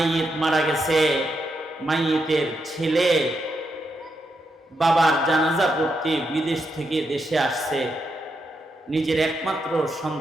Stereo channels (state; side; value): normal; both; correlation 0.82